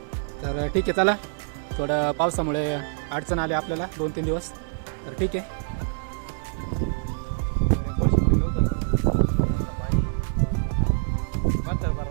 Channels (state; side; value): silent; left; 56 dB below the other